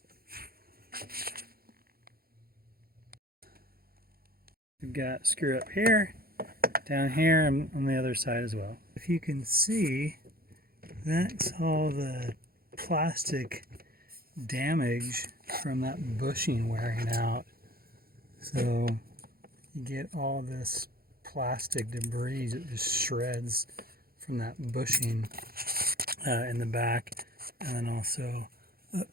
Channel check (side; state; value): left; late; 0.44 ms